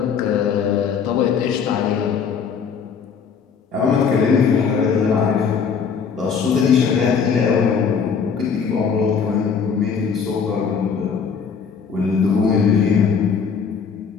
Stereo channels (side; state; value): right; quieter; 6.3 dB